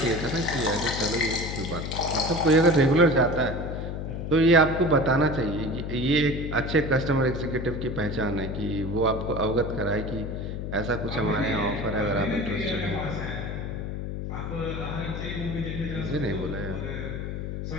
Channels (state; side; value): noise; left; hum, 5 dB below the sound